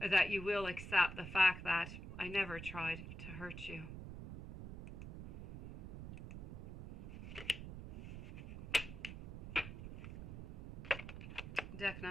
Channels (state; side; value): noise; right; rumble, 9 dB below the sound